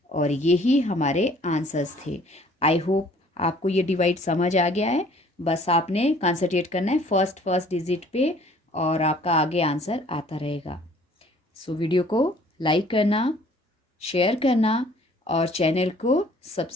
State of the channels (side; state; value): both; normal; correlation 0.55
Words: और यही हमारे आंसर्स थे। आई होप आपको ये डिवाइड समझ आ गया है, बस आपने कंसंट्रेट करना है फर्स्ट डिजिट पे और आपका आगे आंसर आता रहेगा। सो वीडियो को लाइक करना, शेयर करना और चैनल को